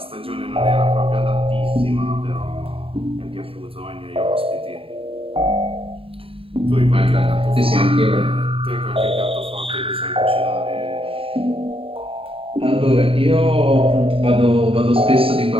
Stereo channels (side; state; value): left; late; 0.27 ms